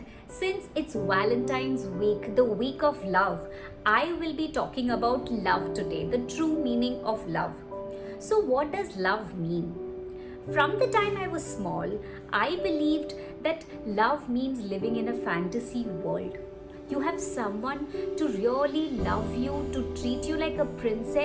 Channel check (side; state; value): both; identical; correlation 1.00